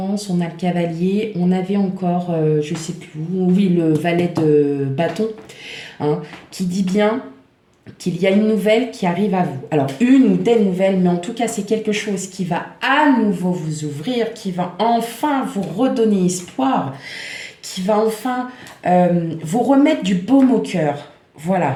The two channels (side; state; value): both; identical; correlation 1.00